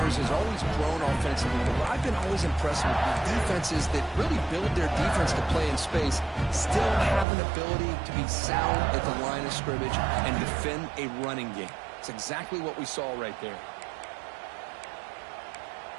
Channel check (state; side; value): drops out; left; at 7.2 s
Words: has always grown offensively, but what I've been always impressed with defenses that really build their defense to play in space still have an ability to be sound at the line of scrimmage and defend a running game. It's exactly what we saw right there.